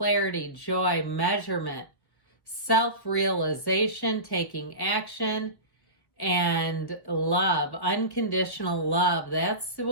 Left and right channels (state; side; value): late; right; 1.2 ms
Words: joy, measurement, self-realization, taking action, and love, unconditional love. That's